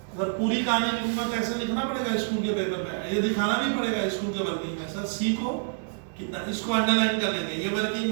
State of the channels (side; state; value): left; silent; digital silence